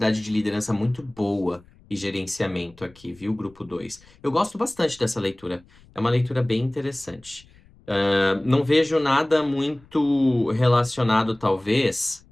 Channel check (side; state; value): left; noise; rumble, 27 dB below the sound